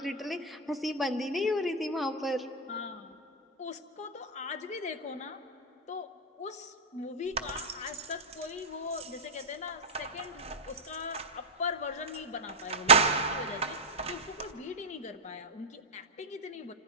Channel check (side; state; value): both; normal; correlation -0.01